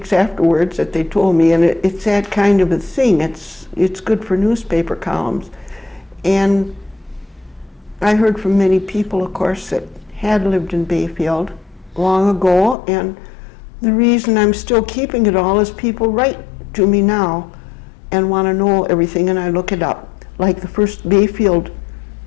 afterwards that they told me, and it's that kind of a thing. It's good for newspaper columns. And I heard from many people, of course, that had lived in Bayfield long ago, and the reason I'm still keeping it all is people write to me now and want to know everything, and I look it up. Like the first Bayfield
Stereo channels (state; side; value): drops out; right; at 12.8 s